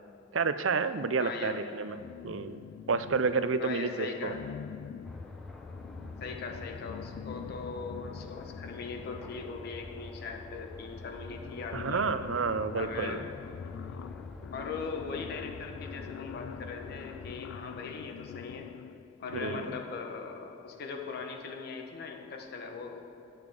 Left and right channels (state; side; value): normal; both; correlation -0.04